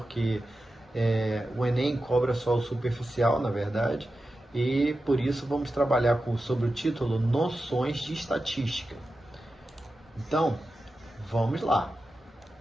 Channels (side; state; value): both; normal; correlation 0.92